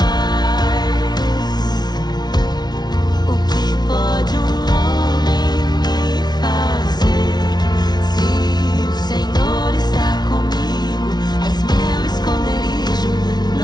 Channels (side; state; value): right; late; 0.20 ms